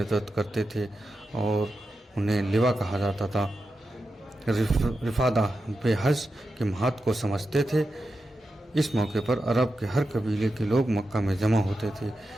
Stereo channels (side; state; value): both; normal; correlation 0.90